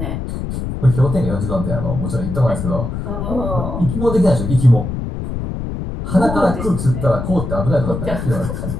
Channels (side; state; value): left; noise; rumble, 4 dB below the sound